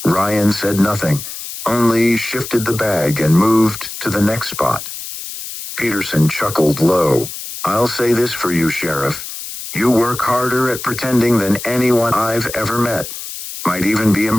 Ryan said nothing, only shifted the bag and moved to the next spot. Peterson chuckled low. I'll say this for you, Sheriff. You work harder at pretending than anyone I've ever met. Might even be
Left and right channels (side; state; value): left; noise; hiss, 9 dB below the sound